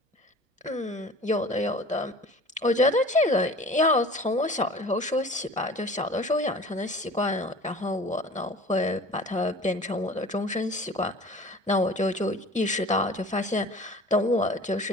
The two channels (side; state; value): both; normal; correlation 0.43